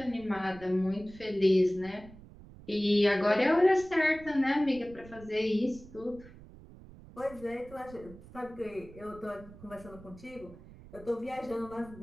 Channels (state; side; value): noise; right; rumble, 19 dB below the sound